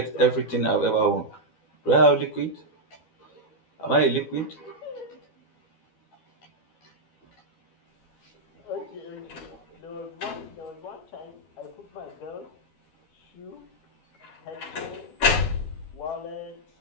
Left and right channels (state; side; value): late; right; 12 ms